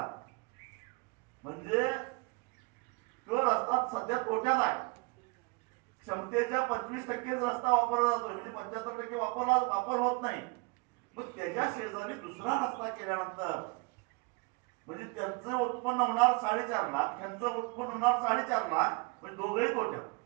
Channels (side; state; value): left; quieter; 29.1 dB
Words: म्हणजे तो रस्ता सध्या तोट्यात आहे. क्षमतेच्या 25% रस्ता वापरला जातोय, म्हणजे 75% वापर होत नाही. मग त्याच्या शेजारी दुसरा रस्ता केल्यानंतर म्हणजे त्यांचं उत्पन्न होणार 4.5 लाख, त्यांचं उत्पन्न होणार 4.5 लाख, म्हणजे दोघंही